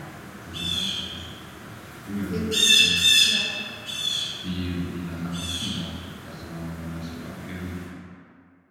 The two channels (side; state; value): both; identical; correlation 1.00